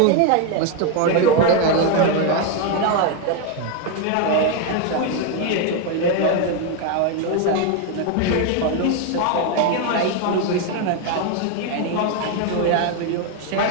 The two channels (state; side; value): different; both; correlation 0.01